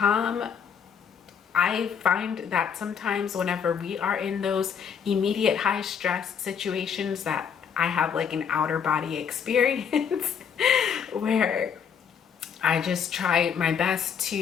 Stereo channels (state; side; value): quieter; right; 7.3 dB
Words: I find that sometimes whenever we are in those immediate high stress situations that I have like an outer body experience where I just try my best